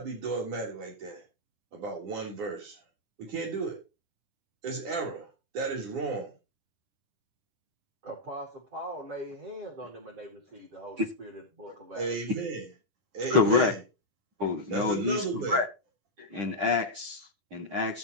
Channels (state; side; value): late; left; 10 ms